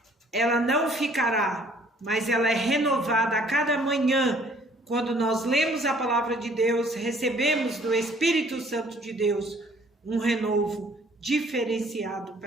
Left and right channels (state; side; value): normal; both; correlation 0.58